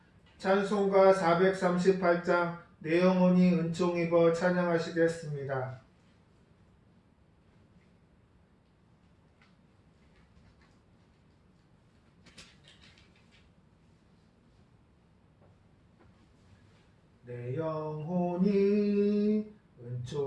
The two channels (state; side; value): identical; both; correlation 1.00